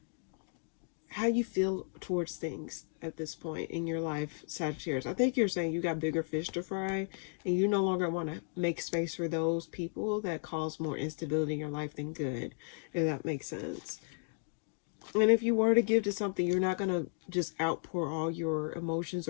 how you feel towards things at this point in your life, Sagittarius. I think you're saying you got bigger fish to fry and you no longer want to make space for those people that cause more instability in your life than good, if that makes sense. And if you were to give to something, you're not going to just outpour all your emotions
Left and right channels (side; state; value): right; silent; digital silence